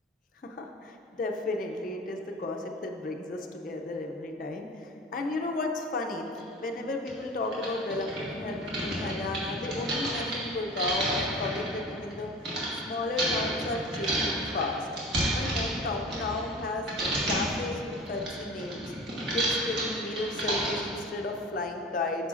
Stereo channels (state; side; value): normal; both; correlation 0.37